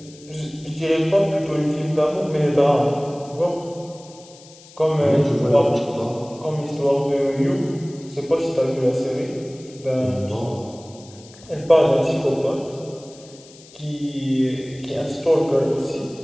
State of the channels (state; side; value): noise; left; hiss, 22 dB below the sound